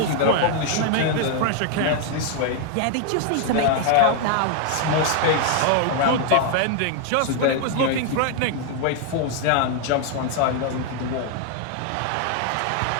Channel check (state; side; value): different; both; correlation 0.00